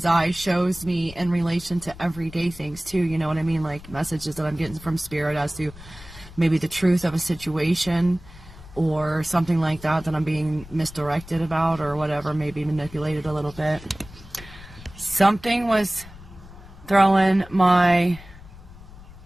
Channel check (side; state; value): left; noise; rumble, 18 dB below the sound